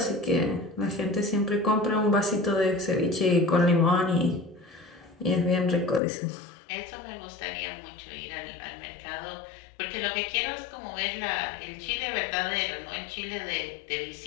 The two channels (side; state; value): right; drops out; at 6.0 s